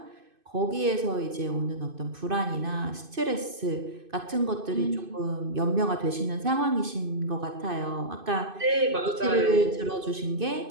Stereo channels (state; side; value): late; left; 2.5 ms